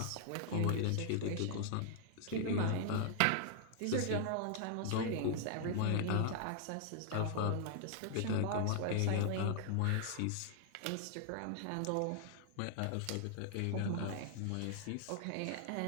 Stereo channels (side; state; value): both; different; correlation -0.01